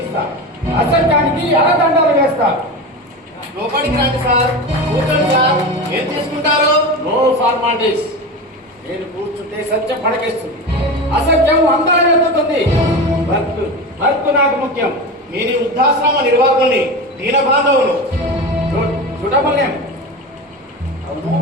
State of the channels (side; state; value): both; normal; correlation 0.25